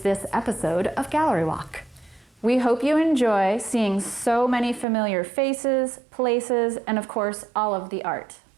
this episode of Gallery Walk. We hope you enjoy seeing so many familiar faces, places, and of course, all of the art.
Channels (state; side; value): drops out; left; at 4.9 s